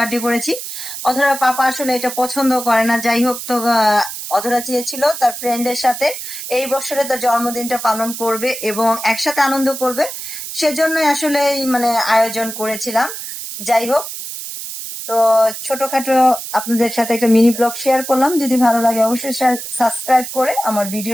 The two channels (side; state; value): right; noise; hiss, 8 dB below the sound